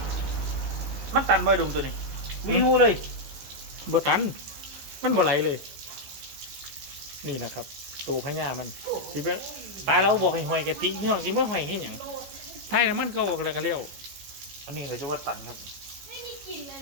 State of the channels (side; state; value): left; late; 15 ms